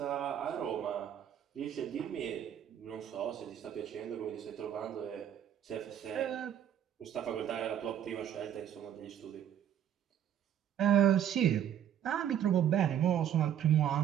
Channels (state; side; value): quieter; left; 9.9 dB